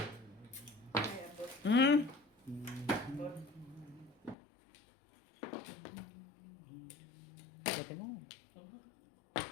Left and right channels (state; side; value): drops out; right; at 4.4 s